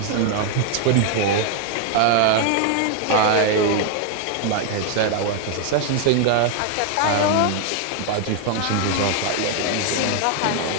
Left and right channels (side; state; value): both; different; correlation 0.00